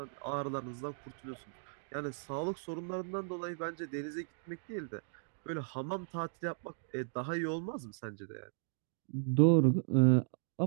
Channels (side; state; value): left; silent; digital silence